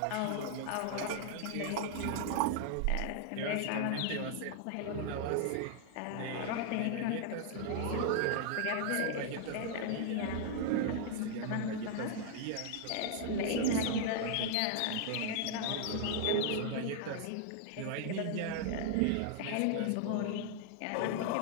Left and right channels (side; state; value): both; different; correlation 0.00